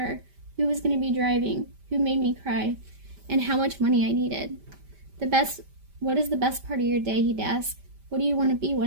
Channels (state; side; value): late; left; 5.1 ms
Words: who was going to be driving, who made me cry, and how much money I needed. What is the best part of your day, he'd ask. What do you want to be